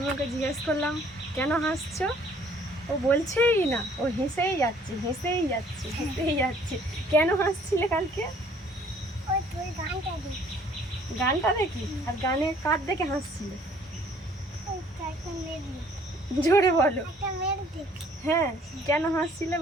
ওকে জিজ্ঞেস করলাম, কেন হাসছো? ও বলছেই না, ও হেসেই যাচ্ছে। কেন হাসছিলে কালকে? গানটা দেখি? আর গানে কার দেখে হাসছিলে? জোরে বলো। হ্যাঁ, কেন হাসছিলে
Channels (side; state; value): both; normal; correlation 0.58